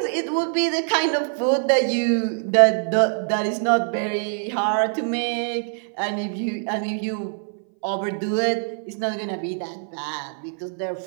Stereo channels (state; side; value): silent; left; 60 dB below the other